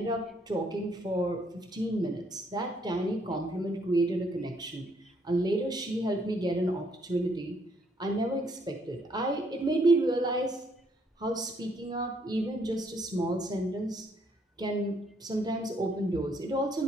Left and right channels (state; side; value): normal; both; correlation 0.69